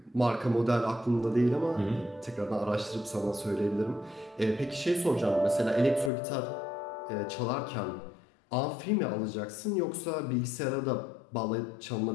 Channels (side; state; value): right; drops out; at 6.1 s